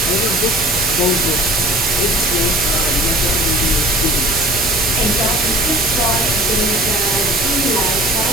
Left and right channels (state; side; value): normal; both; correlation 0.44